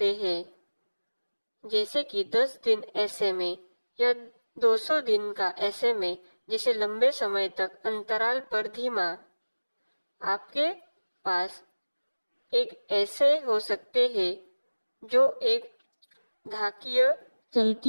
हैं, जैसे कि 10 दिन SMA या 200 दिन का SMA, जिसे लंबे समय तक अंतराल पर धीमा। आपके पास एक ऐसे हो सकते हैं जो एक घातीय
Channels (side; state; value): both; inverted; correlation -1.00